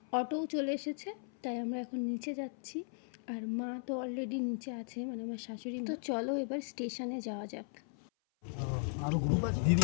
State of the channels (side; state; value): right; silent; 53 dB below the other